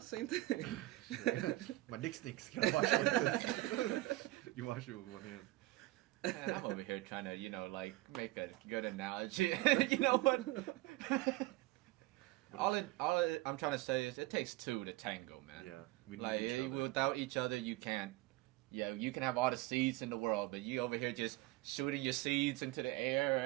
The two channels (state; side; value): quieter; left; 18.8 dB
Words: thing. My dick stinks. Can I wash it with this? You wash it with one hand. Man, I'm over here trying to, you know, like make a good analogy. You know what? I'm trying to say is it takes two to tango, man. Yeah, we need Like each other. without each other, you can't. Yeah, you can have all the seeds in the world, but you over here just shooting your seeds into the air